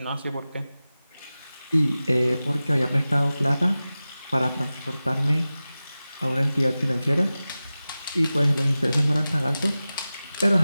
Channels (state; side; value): inverted; both; correlation -0.96